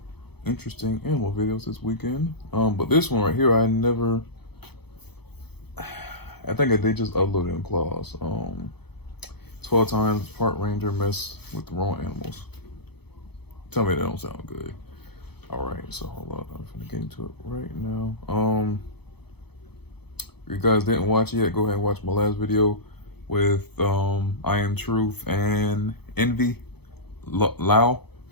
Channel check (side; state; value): right; late; 0.97 ms